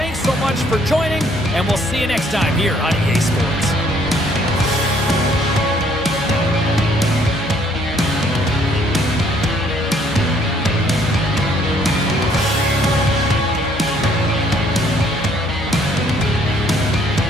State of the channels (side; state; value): both; normal; correlation 0.64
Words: so much for joining, and we'll see you next time here on EA Sports.